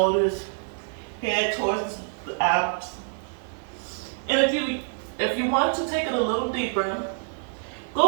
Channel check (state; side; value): silent; left; digital silence